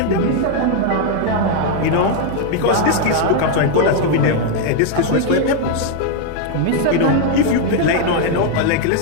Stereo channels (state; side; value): different; both; correlation 0.00